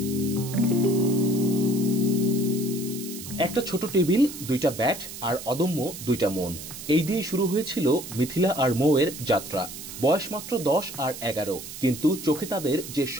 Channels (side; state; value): right; noise; hiss, 11 dB below the sound